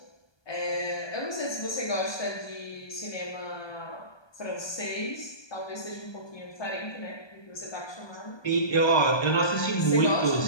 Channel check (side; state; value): right; late; 1.2 ms